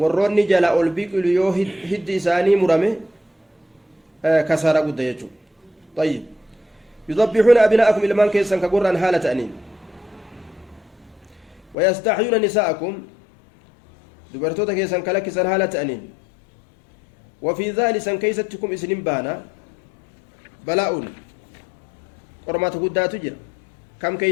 jala ol biqilu yoo hiddi isaanii murame kasaara guddaa jechuudha. طيب يذبحون أبناءكم ilmaan keessan ka gurraan haala ta'aniin ويستحيون نساءكم dubartoota keessan ka lakkisan haala ta'aniin وفي ذلك سن كيستكم إسنين بانا بلاء qormaata guddaatu jira kam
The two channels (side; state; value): right; drops out; at 11.8 s